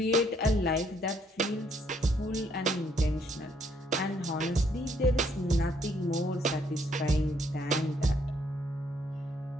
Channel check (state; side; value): normal; both; correlation 0.69